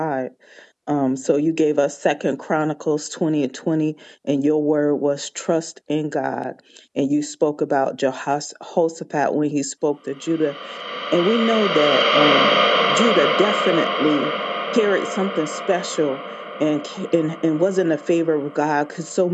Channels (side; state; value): both; identical; correlation 1.00